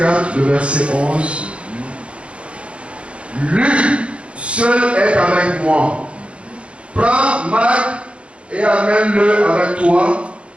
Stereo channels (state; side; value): late; left; 0.060 ms